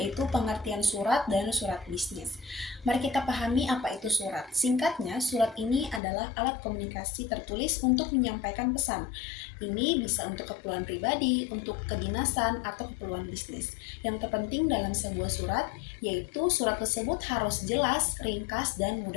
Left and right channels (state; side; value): drops out; right; at 6.0 s